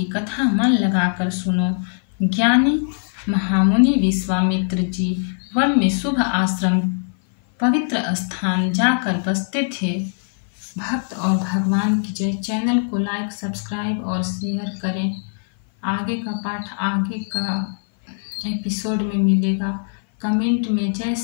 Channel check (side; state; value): right; silent; 57 dB below the other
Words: कथा मन लगाकर सुनो। ज्ञानी महामुनि विश्वामित्र जी वन में शुभ आश्रम पवित्र स्थान जाकर बसते थे। भक्त और भगवान की जय। चैनल को लाइक सब्सक्राइब और शेयर करें। आगे का पाठ आगे का एपिसोड में मिलेगा। कमेंट में जय